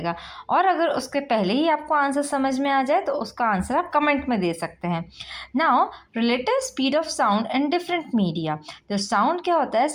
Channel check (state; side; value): identical; both; correlation 1.00